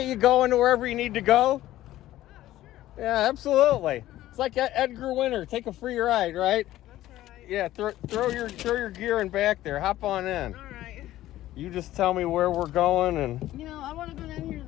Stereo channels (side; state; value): right; quieter; 14.6 dB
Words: you going to wherever you need to go. Sure. Yeah, absolutely. It's like Edgar Winter. Take a free ride, right? That's right. Yeah, throw your gear in back there. Hop on in. All right. You just tell me where we're going and... You know, I want to go down here to